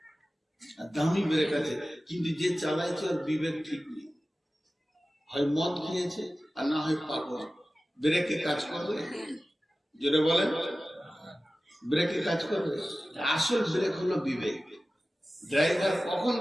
আর দামি ব্রেক আছে, কিন্তু যে চালাইছে ওর বিবেক ঠিক নেই। হয় মদ খেয়েছে আর না হয় পাগল। ব্রেকে কাজ করবে? যেটা বলেন ব্রেকে কাজ করবে? আসল ব্রেক হলো বিবেক। ড্রাইভার কখন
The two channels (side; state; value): both; normal; correlation 0.96